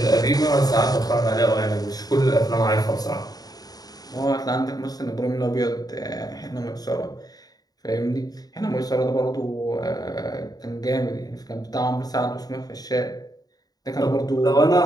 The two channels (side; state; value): right; late; 0.18 ms